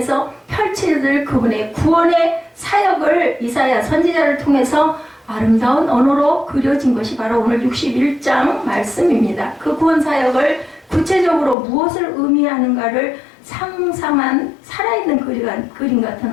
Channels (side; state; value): right; drops out; at 11.6 s